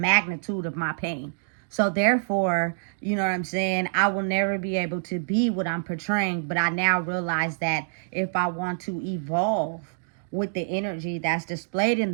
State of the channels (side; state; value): left; silent; digital silence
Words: of my pain. So therefore, you know what I'm saying, I will never be able to be what I'm portraying. But I now realize that if I want to evolve with the energy that's displayed in